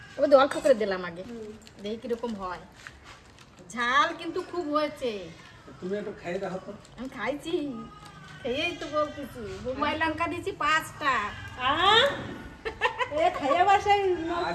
ওদের অল্প করে দিলাম আগে, দেখি কিরকম হয়। ঝাল কিন্তু খুব হয়েছে। তুমি একটু খাই দেখো তো। আমি খাইছি, খেয়েই তো বলতেছি। বোম্বাই লঙ্কা দিয়েছি 5টা। এ খাইয়া বাসায়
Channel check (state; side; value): identical; both; correlation 1.00